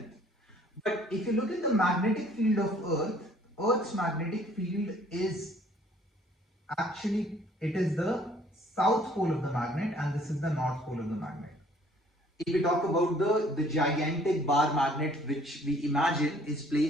But if you look at the magnetic field of Earth, Earth's magnetic field is actually, it is the south pole of the magnet and this is the north pole of the magnet. If we talk about the gigantic bar magnet which we imagine is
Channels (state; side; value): normal; both; correlation 0.58